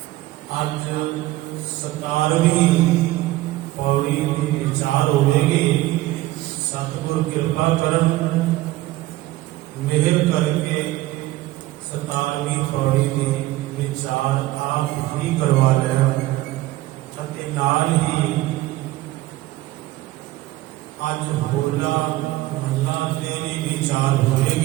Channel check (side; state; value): left; quieter; 17.1 dB